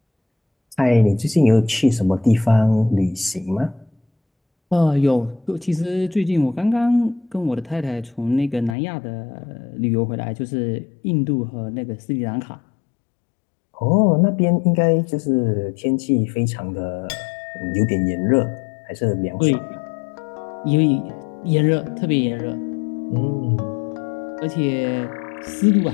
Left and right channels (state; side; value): drops out; right; at 8.8 s